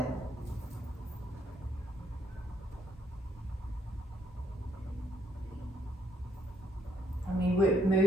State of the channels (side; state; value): both; normal; correlation 0.71